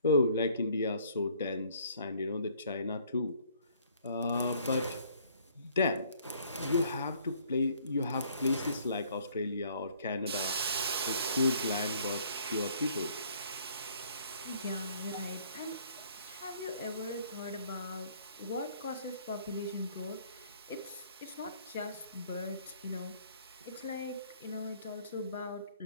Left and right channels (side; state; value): both; inverted; correlation -0.60